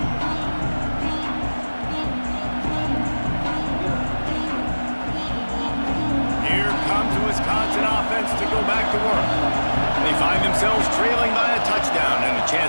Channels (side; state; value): both; inverted; correlation -1.00